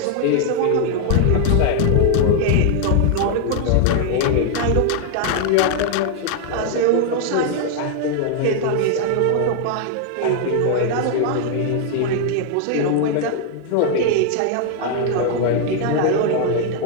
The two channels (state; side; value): different; both; correlation 0.00